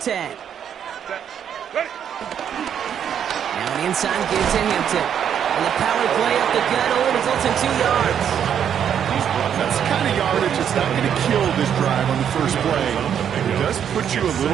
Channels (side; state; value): left; quieter; 8.7 dB